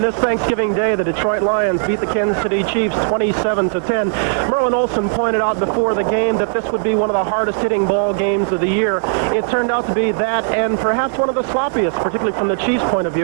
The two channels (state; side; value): silent; left; digital silence